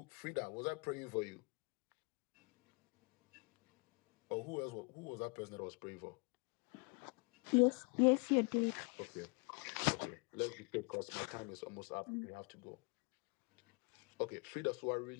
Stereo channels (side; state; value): right; quieter; 33.0 dB